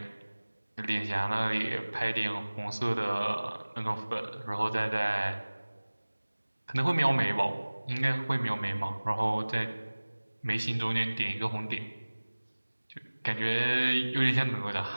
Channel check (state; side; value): inverted; both; correlation -1.00